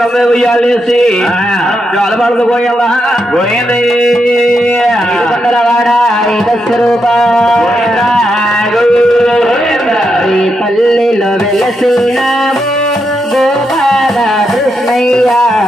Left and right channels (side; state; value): both; normal; correlation 0.83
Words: ఉయ్యాలేసి జోలబాలతో పోయాలా పోయింది పల్లెలో వెలసినాము గోపాల కృష్ణయ్య